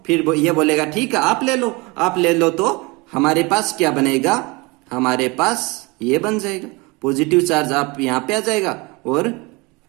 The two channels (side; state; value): left; quieter; 26.0 dB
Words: फिर ये बोलेगा ठीक है आप ले लो, तो हमारे पास क्या बनेगा, हमारे पास ये बन जाएगा पॉजिटिव चार्ज, आप यहां पे आ जाएगा, और